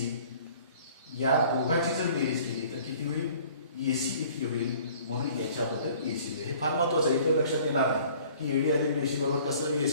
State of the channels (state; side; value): inverted; both; correlation -0.52